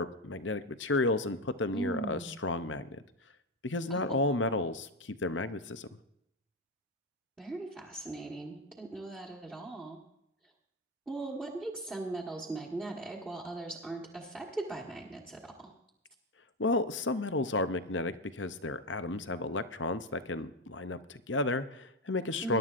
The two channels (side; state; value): both; normal; correlation 0.12